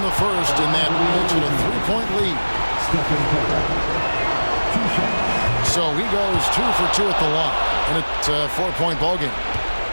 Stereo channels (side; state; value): both; inverted; correlation -1.00